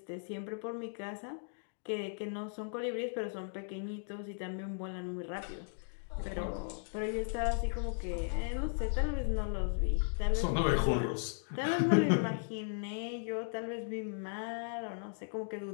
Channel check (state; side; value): silent; right; digital silence